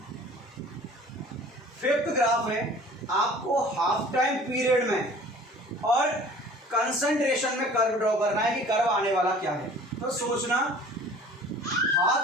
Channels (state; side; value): normal; both; correlation 0.47